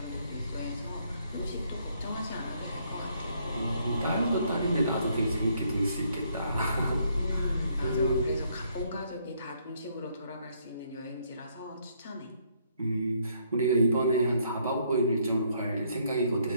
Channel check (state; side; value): inverted; both; correlation -0.69